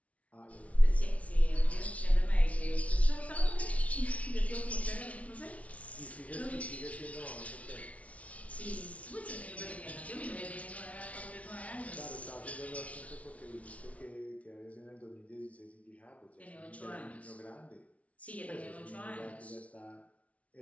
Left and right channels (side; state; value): right; late; 0.066 ms